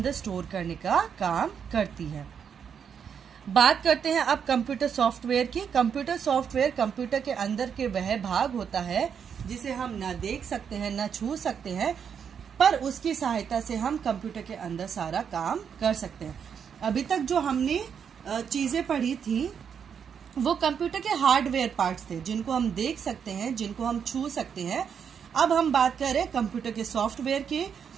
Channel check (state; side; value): quieter; left; 7.4 dB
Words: स्टोर करने का काम करती है। बात करते हैं अब कंप्यूटर सॉफ्टवेयर की। कंप्यूटर सॉफ्टवेयर कंप्यूटर के अंदर के वह भाग होता है जिसे हम न देख सकते हैं न छू सकते हैं, पर उसकी सहायता से हम कंप्यूटर के अंदर सारा काम कर सकते हैं। अभी तक जो हमने चीजें पढ़ी थी वो कंप्यूटर के हार्डवेयर पार्ट्स थे जिनको हम देख सकते हैं, जिनको हम छू सकते हैं। अब हम बात कर रहे हैं कंप्यूटर के सॉफ्टवेयर की।